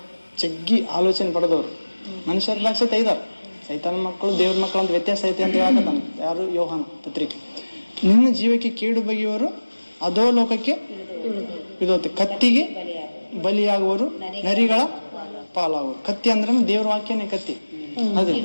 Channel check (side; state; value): both; inverted; correlation -1.00